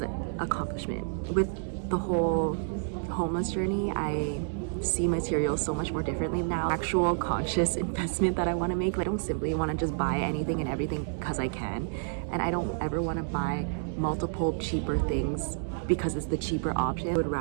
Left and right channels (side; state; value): left; silent; 58 dB below the other